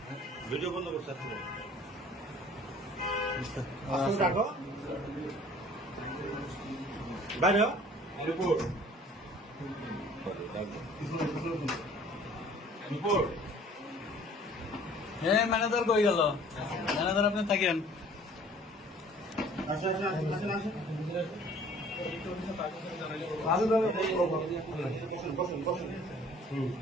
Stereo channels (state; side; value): normal; both; correlation 0.52